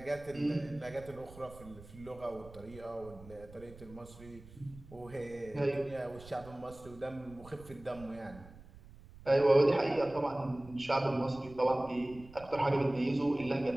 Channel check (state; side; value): noise; right; rumble, 19 dB below the sound